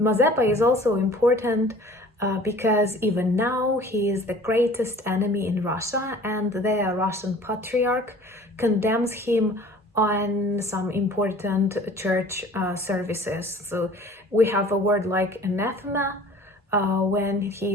is also important because even now he is the greatest enemy in Russia, and the Russian Patriarch condemns him on some important church services. So we have a word like anathema when he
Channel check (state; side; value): normal; both; correlation 0.47